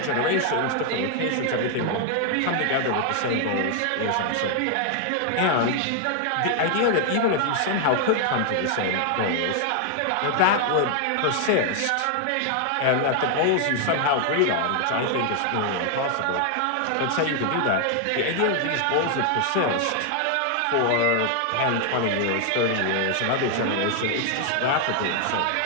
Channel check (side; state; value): both; different; correlation 0.00